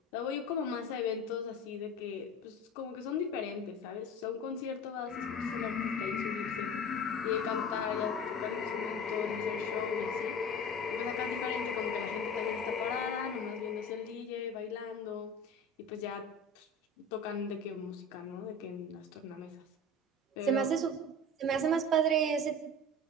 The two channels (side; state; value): both; normal; correlation 0.36